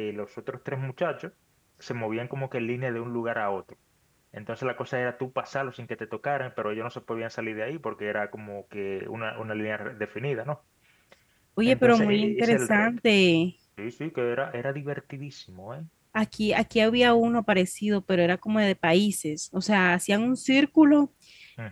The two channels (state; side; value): identical; both; correlation 1.00